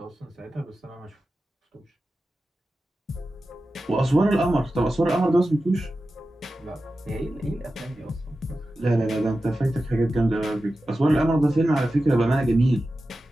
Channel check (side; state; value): both; normal; correlation 0.93